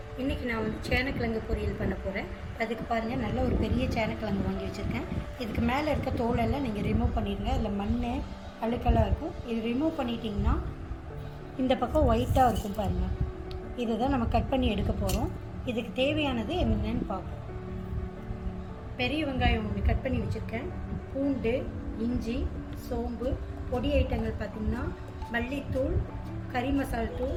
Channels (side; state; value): both; identical; correlation 1.00